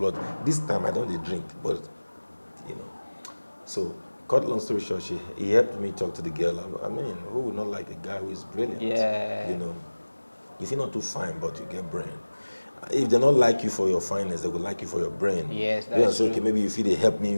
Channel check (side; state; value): both; inverted; correlation -1.00